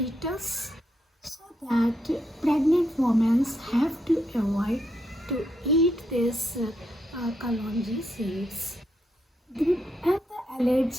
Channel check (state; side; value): normal; both; correlation 0.79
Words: so that pregnant women have to avoid to eat this kalonji seeds. And the